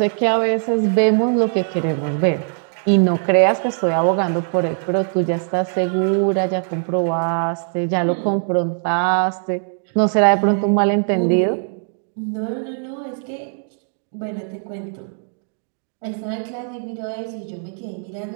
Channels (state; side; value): silent; left; 65 dB below the other